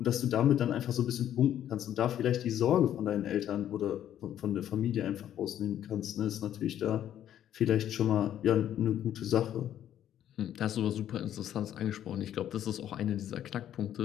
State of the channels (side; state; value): right; quieter; 11.0 dB